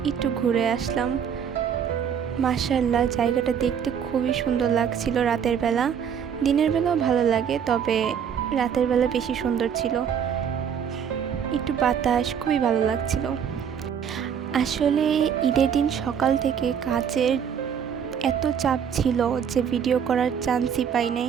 একটু ঘুরে আসলাম। মাশাআল্লাহ, জায়গাটা দেখতে খুবই সুন্দর লাগছিল রাতের বেলা। দিনের বেলাও ভালো লাগে, তবে রাতের বেলা বেশি সুন্দর ছিল। একটু বাতাস, খুবই ভালো লাগছিল। আসলে ঈদের দিন সকাল থেকে কাজের এত চাপ ছিল যে ভিডিও করার চান্সই পাই নাই,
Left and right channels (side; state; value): left; quieter; 7.9 dB